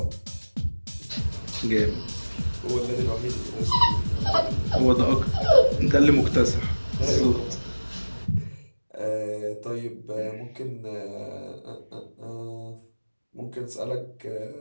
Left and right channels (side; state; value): both; inverted; correlation -1.00